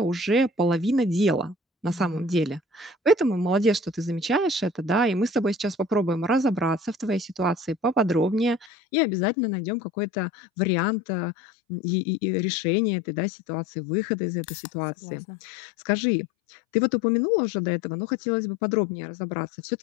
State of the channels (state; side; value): drops out; right; at 8.7 s